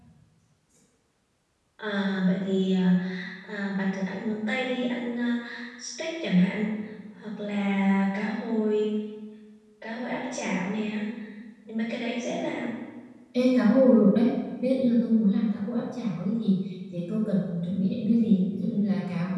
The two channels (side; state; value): both; identical; correlation 1.00